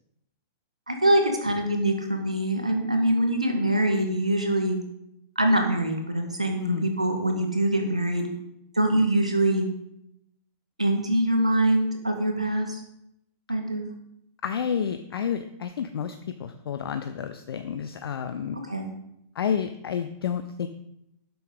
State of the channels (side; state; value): both; inverted; correlation -0.73